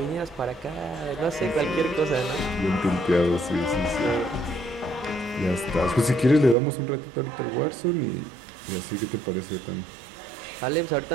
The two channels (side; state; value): left; drops out; at 6.6 s